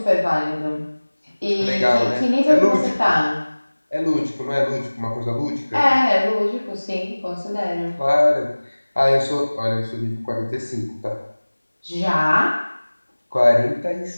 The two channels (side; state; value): both; inverted; correlation -1.00